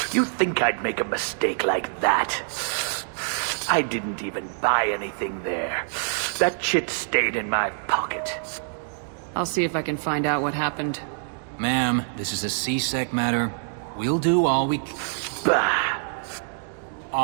You think I'd make a mistake like that? I didn't even buy anything there. That chit stayed in my pocket. I'll see if I can find out what happened. Ma'am, this is a C-Sec matter. We'll do all we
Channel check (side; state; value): left; silent; digital silence